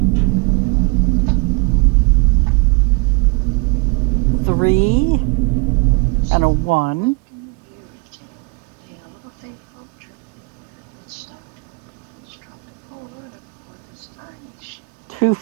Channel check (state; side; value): quieter; left; 30.2 dB